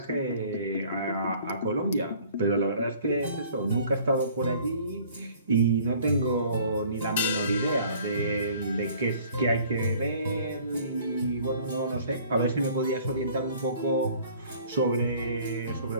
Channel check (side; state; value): both; inverted; correlation -0.53